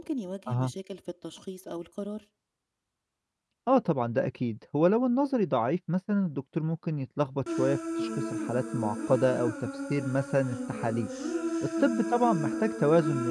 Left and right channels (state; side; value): identical; both; correlation 1.00